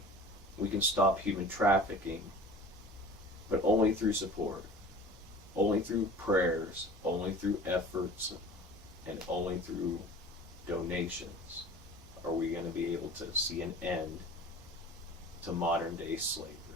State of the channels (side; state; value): both; normal; correlation 0.41